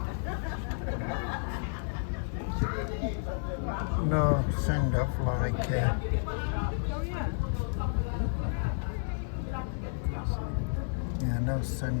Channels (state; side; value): silent; right; 57 dB below the other